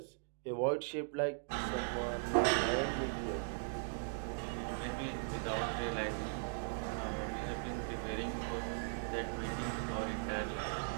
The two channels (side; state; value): left; silent; digital silence